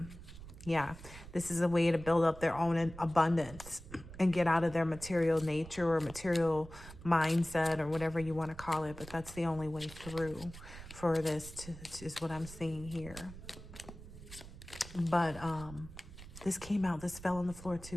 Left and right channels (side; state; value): right; noise; rumble, 15 dB below the sound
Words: Yeah, this is a way to build up their own abundance and get out of their material nature or material mindset or whatever you want to call it. But that's the only way through for this is what I'm seeing here. But this came out, this fell on the floor too,